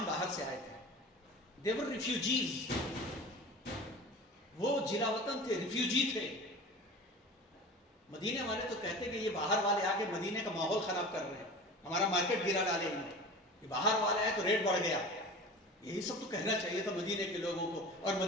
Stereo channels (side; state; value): both; normal; correlation 0.36